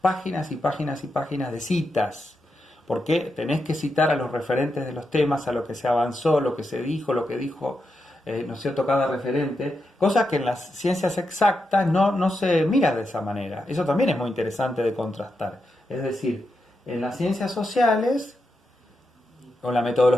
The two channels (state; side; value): normal; both; correlation 0.86